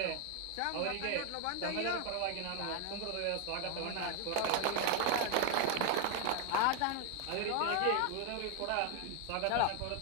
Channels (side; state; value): both; different; correlation 0.01